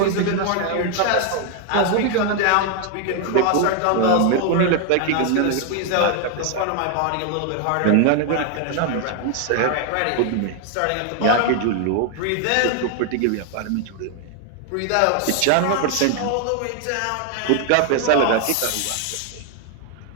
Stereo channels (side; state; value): both; different; correlation 0.00